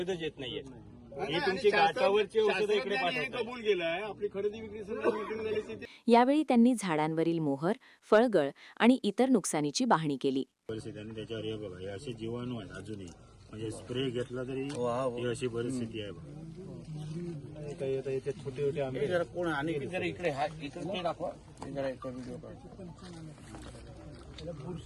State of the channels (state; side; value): identical; both; correlation 1.00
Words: येत नाहीये. ही तुमची गाठावरची औषधं इकडे कबूल केलंय. आपली खरेदी विक्री झाली. यावेळी त्यांनी झाडांवरील मोहर, फळगळ आणि इतर नुकसानीची पाहणी केली. परिस्थिती आणि त्याच्यावर हे बघा, हे असे जीवाणू आहेत अजूनही, म्हणजे स्प्रे घेतला तरी ही अशी परिस्थिती आहे. छोटे छोटे आंबे कोण आणि इकडे इकडे दाखवा.